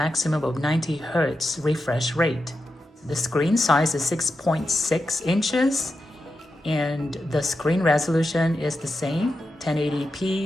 of 90 Hz refresh rate. The screen size is 6.6 inches, and the screen resolution is the same,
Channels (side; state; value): both; normal; correlation 0.89